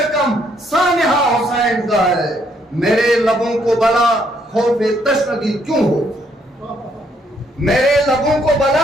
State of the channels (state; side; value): normal; both; correlation 0.70